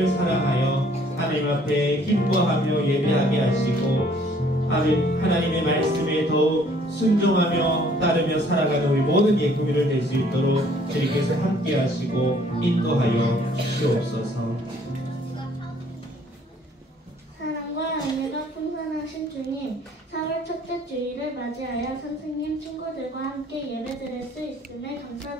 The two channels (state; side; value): normal; both; correlation 0.59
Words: 사랑하여 하나님 앞에 기뻐하며 예배하게 하시고 하나님의 말씀에 더욱 순종하며 따르며 살아가는 우리 모든 예꾸미를 될 수 있도록 주님께서 함께 하시고 인도하여 주시옵소서. 사랑과 은혜가 풍성하신 주님, 4월 첫째 주일을 맞이하여 선생님, 친구들과 함께 예배드릴 수 있음에